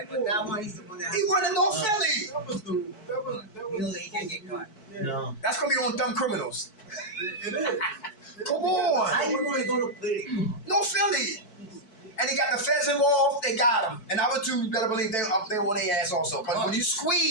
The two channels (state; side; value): late; right; 4.6 ms